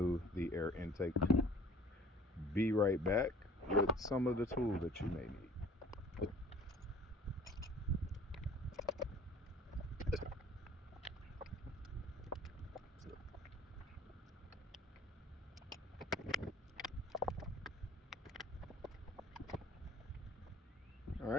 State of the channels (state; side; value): normal; both; correlation 0.48